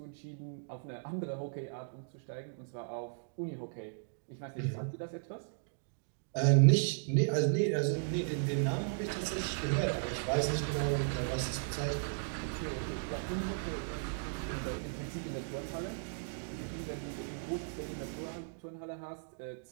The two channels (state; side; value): silent; left; digital silence